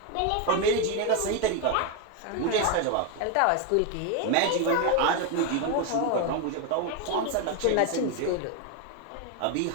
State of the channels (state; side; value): different; both; correlation 0.02